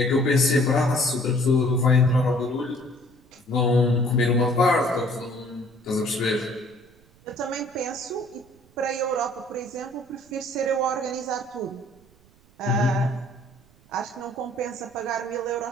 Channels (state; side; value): noise; right; rumble, 29 dB below the sound